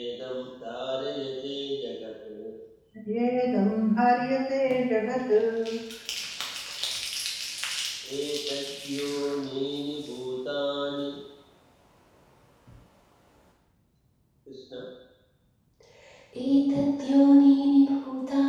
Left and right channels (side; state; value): both; identical; correlation 1.00